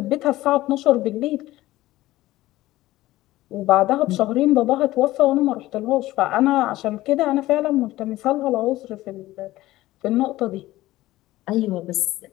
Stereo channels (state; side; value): quieter; right; 16.7 dB